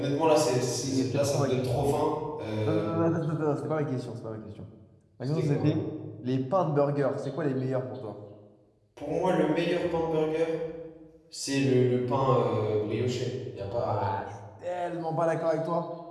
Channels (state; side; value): identical; both; correlation 1.00